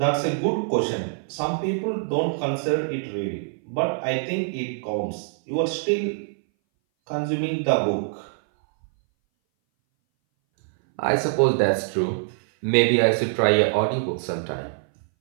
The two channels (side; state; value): left; silent; 60 dB below the other